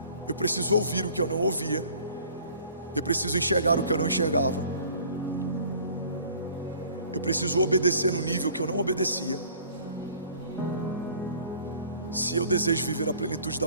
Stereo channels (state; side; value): inverted; both; correlation -0.53